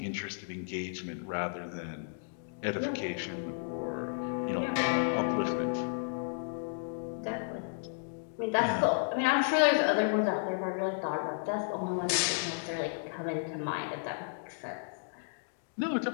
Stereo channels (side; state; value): right; silent; digital silence